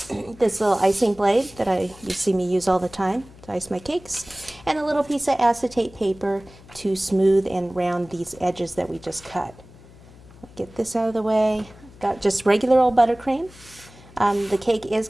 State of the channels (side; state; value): left; noise; hum, 22 dB below the sound